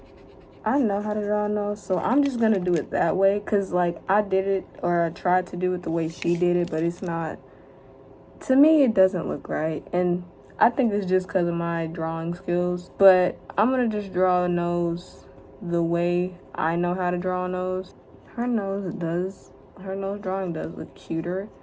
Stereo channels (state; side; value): identical; both; correlation 1.00